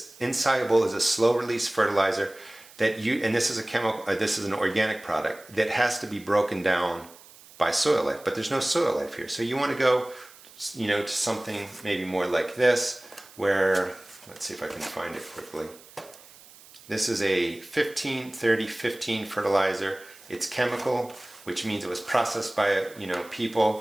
insoluble is a slow release fertilizer that you, and this is a chemical, this is an organic product that has to be broken down by soil life, but there's no soil life here. So you want to go, you know, to something maybe more like this, where, let's see if I can find it quickly. This is a 15-30-15 fertilizer. It's chemical, which means it was processed by, you know,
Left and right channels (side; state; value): right; noise; hiss, 22 dB below the sound